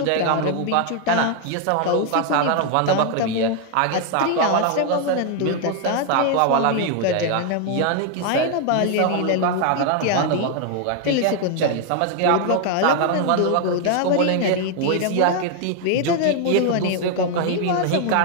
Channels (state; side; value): different; both; correlation 0.00